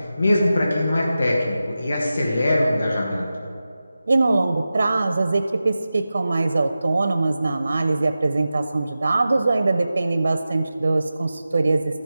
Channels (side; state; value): both; inverted; correlation -0.93